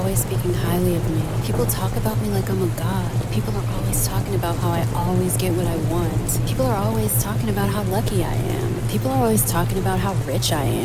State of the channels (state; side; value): identical; both; correlation 1.00